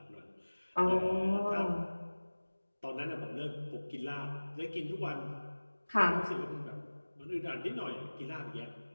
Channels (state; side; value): inverted; both; correlation -1.00